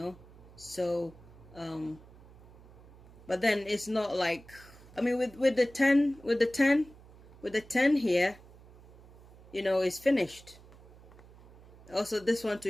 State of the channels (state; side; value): noise; right; hum, 22 dB below the sound